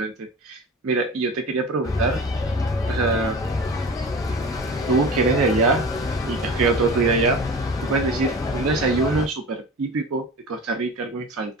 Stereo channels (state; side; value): normal; both; correlation 0.35